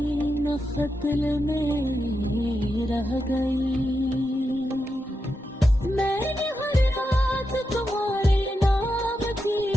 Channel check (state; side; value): normal; both; correlation 0.87